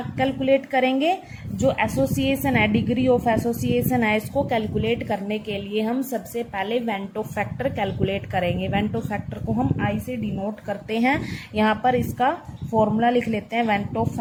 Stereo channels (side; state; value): both; identical; correlation 1.00